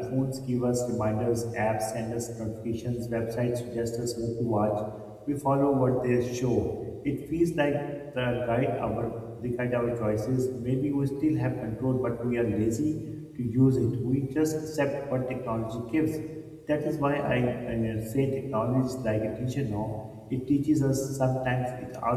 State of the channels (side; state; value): both; identical; correlation 1.00